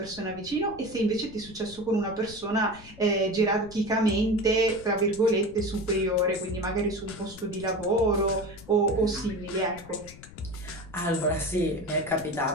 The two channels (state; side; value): noise; left; rumble, 19 dB below the sound